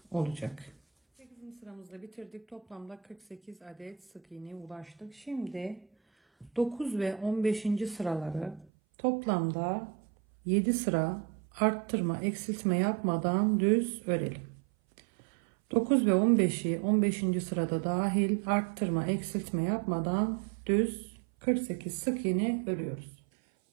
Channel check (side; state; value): left; drops out; at 8.7 s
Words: olacak. 8. sıramızda bitirdik. Toplamda 48 adet sık iğneye ulaştık. Şimdi 9 ve 15. sıraları toplamda 7 sıra arttırma eksiltme yapmadan düz örelim. 9 ve 15'i 15. sırada dahil arttırma eksiltme yapmadan düz 48 sık iğne örüyoruz.